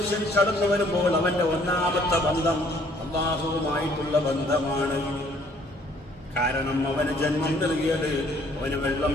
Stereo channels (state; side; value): normal; both; correlation 0.61